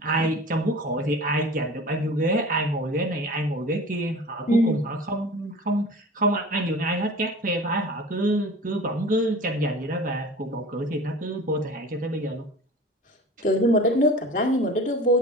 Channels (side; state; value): both; normal; correlation 0.39